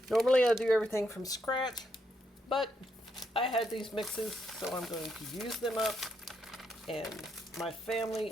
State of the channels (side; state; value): both; normal; correlation 0.78